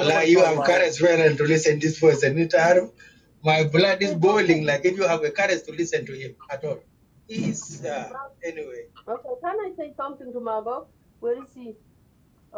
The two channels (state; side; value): identical; both; correlation 1.00